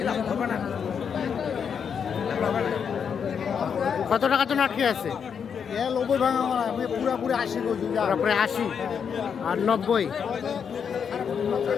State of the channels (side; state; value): right; quieter; 7.0 dB